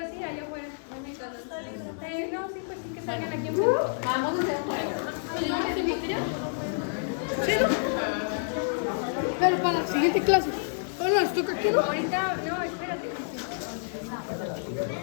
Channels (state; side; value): silent; right; 59 dB below the other